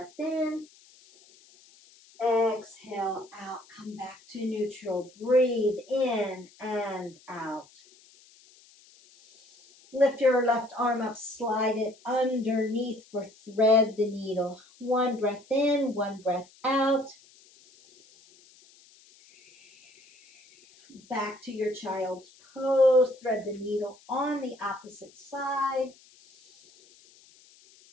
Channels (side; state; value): left; noise; hiss, 27 dB below the sound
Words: in. Exhale out. Come back to neutral. Breathe in and out. Lift your left arm up. Slide it underneath for thread the needle. One breath in. One breath out. Back to your child's pose. Thread the needle on the opposite side.